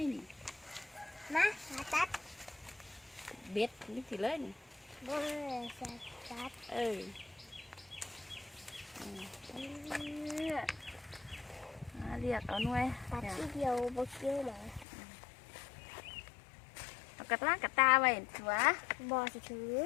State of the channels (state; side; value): drops out; right; at 14.9 s